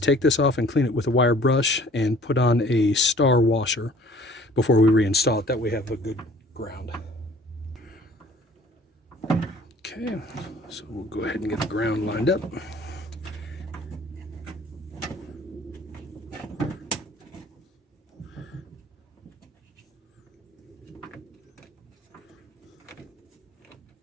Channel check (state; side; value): normal; both; correlation 0.52